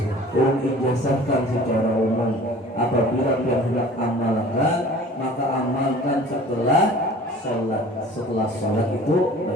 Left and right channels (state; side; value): normal; both; correlation 0.45